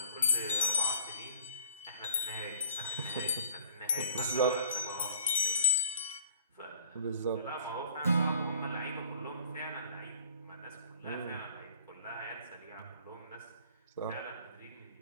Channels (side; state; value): both; inverted; correlation -0.51